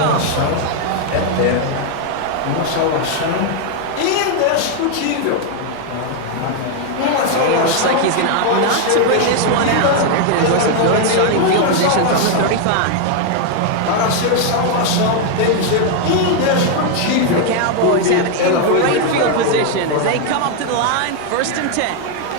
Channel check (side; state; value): both; different; correlation 0.00